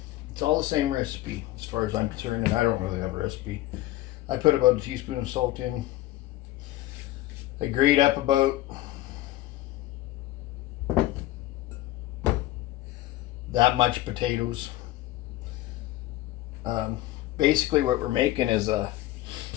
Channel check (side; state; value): right; quieter; 15.9 dB